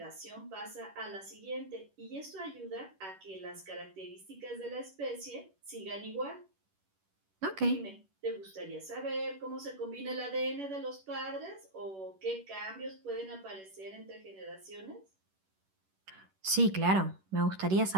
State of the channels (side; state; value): left; late; 10 ms